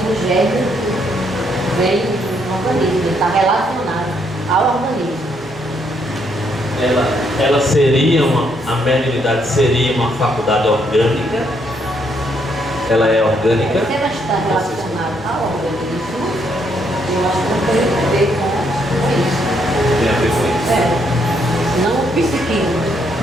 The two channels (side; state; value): both; normal; correlation 0.73